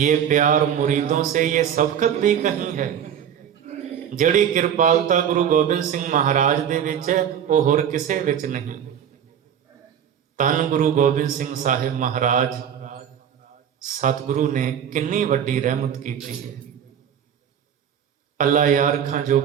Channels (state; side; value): quieter; left; 8.9 dB